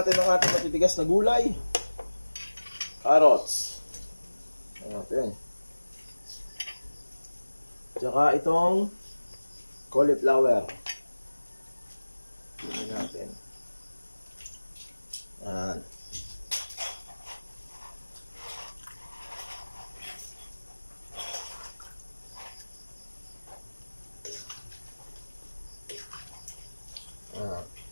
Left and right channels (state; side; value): inverted; both; correlation -1.00